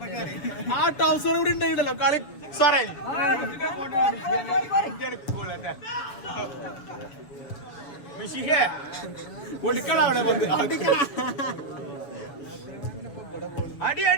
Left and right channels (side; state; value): right; late; 7.1 ms